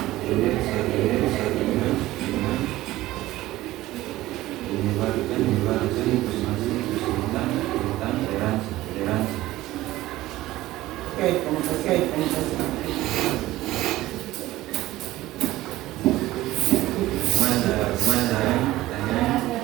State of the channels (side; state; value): left; quieter; 16.6 dB